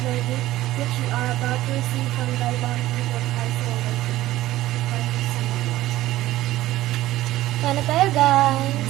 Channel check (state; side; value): quieter; left; 15.7 dB